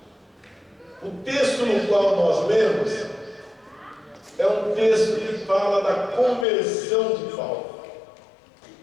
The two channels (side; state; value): right; drops out; at 6.5 s